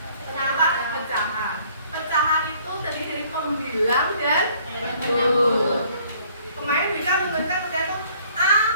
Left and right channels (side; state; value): both; inverted; correlation -0.59